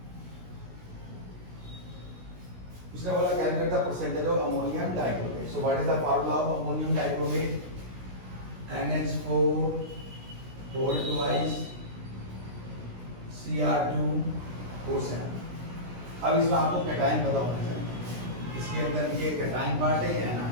उसने बोला calculate the percentage of ammonium dichromate. So what is the formula of ammonium dichromate? NH4 whole twice Cr2O7। अब इसमें आपको कैटायन पता होना चाहिए, इसके अंदर ये कैटायन पार्ट है या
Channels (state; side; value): late; left; 16 ms